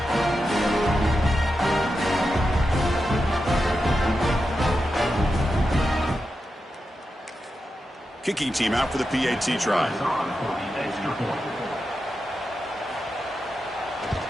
Kicking team out for the PAT try.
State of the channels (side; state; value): both; normal; correlation 0.89